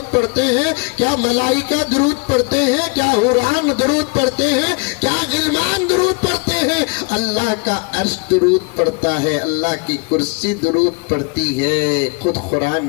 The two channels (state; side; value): quieter; right; 31.4 dB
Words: پڑھتے ہیں، کیا ملائکہ درود پڑھتے ہیں، کیا حوران درود پڑھتے ہیں، کیا غلمان درود پڑھتے ہیں۔ اللہ کا عرش درود پڑھتا ہے، اللہ کی کرسی درود پڑھتی ہے، خود قرآن